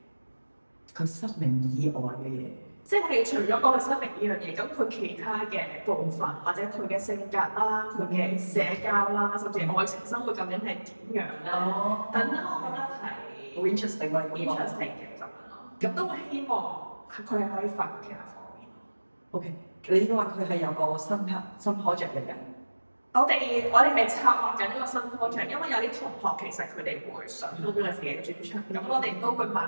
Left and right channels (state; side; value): inverted; both; correlation -1.00